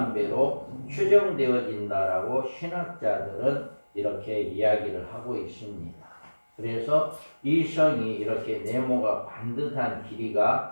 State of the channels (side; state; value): both; inverted; correlation -1.00